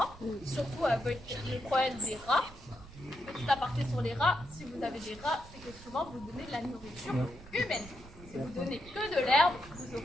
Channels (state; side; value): noise; right; rumble, 18 dB below the sound